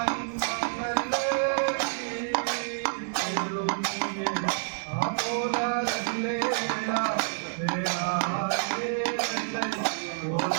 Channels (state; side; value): silent; left; digital silence